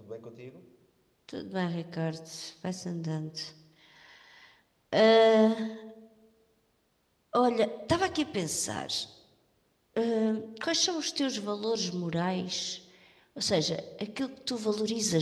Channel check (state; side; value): identical; both; correlation 1.00